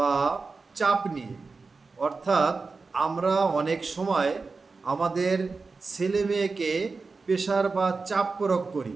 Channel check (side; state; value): left; quieter; 4.2 dB